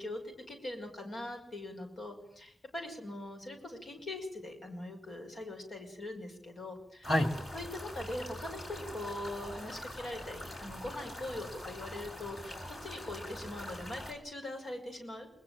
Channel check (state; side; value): normal; both; correlation 0.85